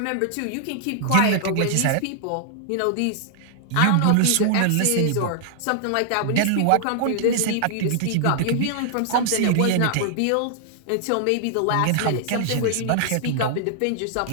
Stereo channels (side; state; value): both; different; correlation -0.01